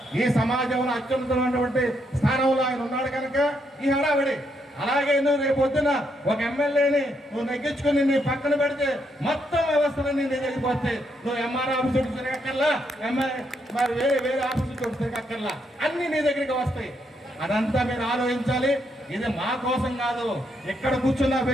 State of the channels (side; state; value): both; normal; correlation 0.77